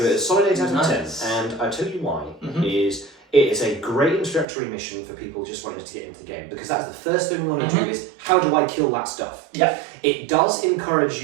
it a solid 8 out of 10, and I'll tell you why. It is a great introductory mission for people just wanting to get into the game, because that's the first thing we want to do is, how do I kill that stuff? It does encourage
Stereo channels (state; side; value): drops out; left; at 4.5 s